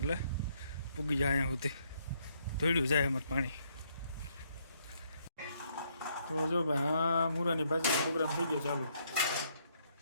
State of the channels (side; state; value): both; inverted; correlation -0.71